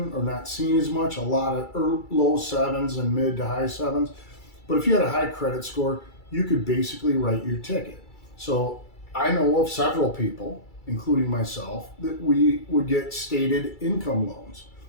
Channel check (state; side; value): late; right; 2.3 ms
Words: or not seen as much, a lot of low sevens and mid to high sevens. But if you had a high credit score, you could basically write your ticket. So I know of several people, including myself, that we would get stated income loans.